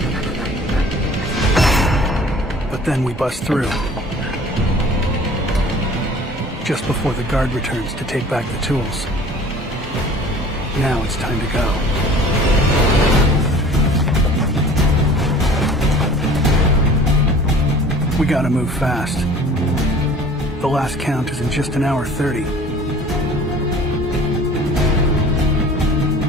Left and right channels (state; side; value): normal; both; correlation 0.47